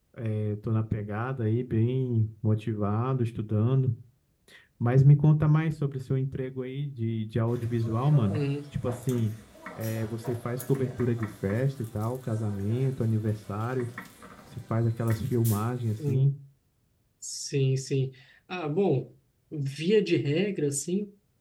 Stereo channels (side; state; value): both; identical; correlation 1.00